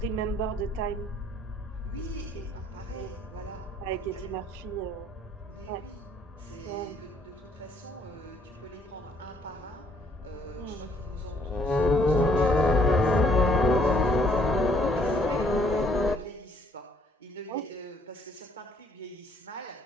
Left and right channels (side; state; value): both; normal; correlation 0.65